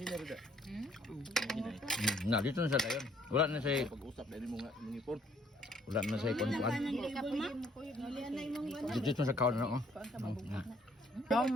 rin da. Na, dito na siya tayo. Wala na siya. Pag-usap, dahil mo nga mangipon. Wala na siya ikon-kuan. Dito na siya kaon na, oh.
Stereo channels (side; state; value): both; normal; correlation 0.64